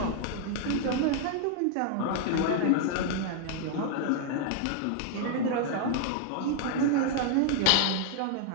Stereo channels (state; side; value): different; both; correlation 0.00